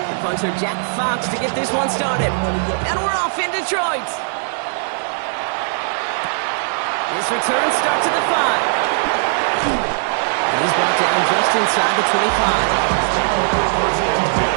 The punter Jack Fox to get this one started. And we're off in Detroit. This return starts at the 5. And he's brought down just inside the 25.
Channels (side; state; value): left; silent; digital silence